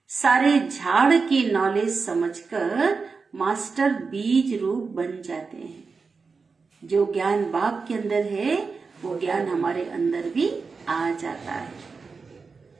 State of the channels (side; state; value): left; quieter; 4.7 dB